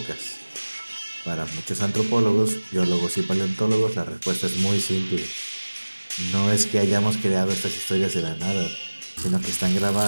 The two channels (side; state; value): both; inverted; correlation -1.00